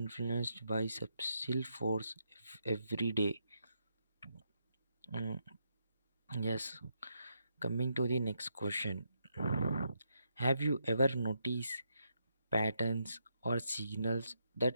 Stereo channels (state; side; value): inverted; both; correlation -0.80